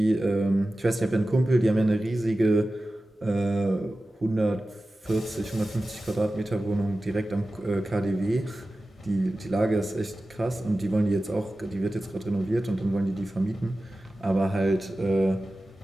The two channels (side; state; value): both; normal; correlation 0.95